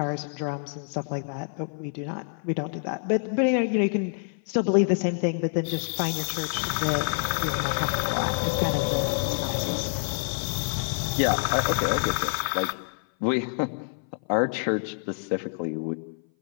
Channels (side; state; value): right; silent; 57 dB below the other